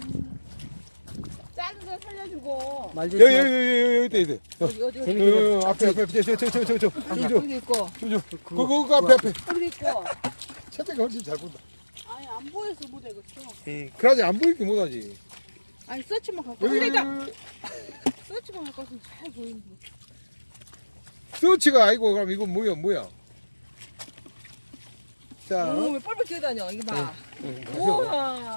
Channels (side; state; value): both; inverted; correlation -1.00